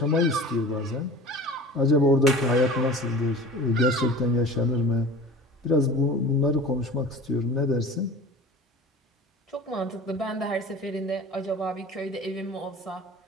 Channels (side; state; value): both; normal; correlation 0.39